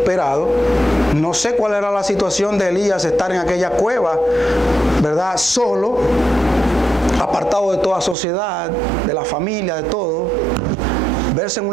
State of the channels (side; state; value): left; drops out; at 8.2 s